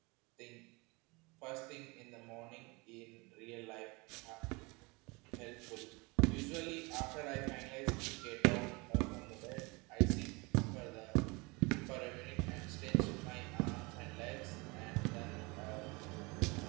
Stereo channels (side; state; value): left; quieter; 26.6 dB